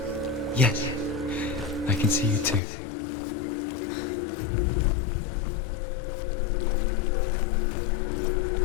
Yes, I can see you too.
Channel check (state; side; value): drops out; right; at 2.6 s